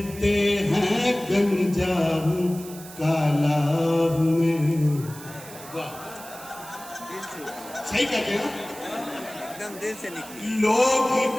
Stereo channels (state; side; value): noise; right; hiss, 16 dB below the sound